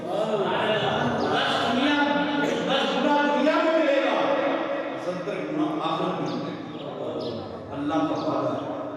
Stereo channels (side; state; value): both; identical; correlation 1.00